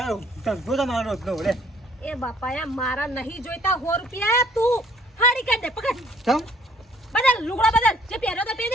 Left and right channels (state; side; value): normal; both; correlation 0.60